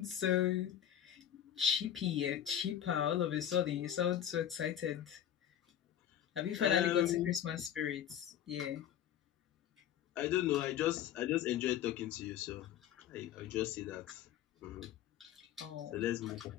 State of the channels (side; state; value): right; quieter; 10.4 dB